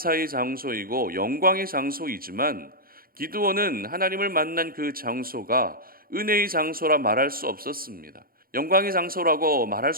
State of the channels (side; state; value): left; late; 0.42 ms